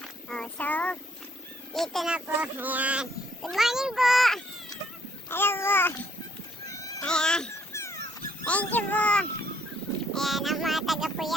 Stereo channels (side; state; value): both; normal; correlation 0.66